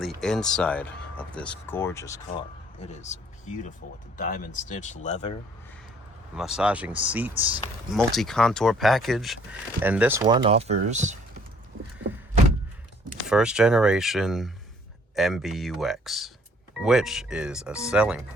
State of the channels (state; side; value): normal; both; correlation 0.60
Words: the inside of this gorgeous car. It is beautiful with the diamond stitched leather, massaging seats, multi-contour package, and this one offers first generation MBUX, which is a selling